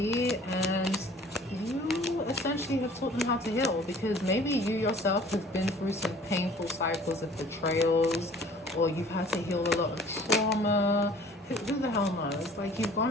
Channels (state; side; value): normal; both; correlation 0.51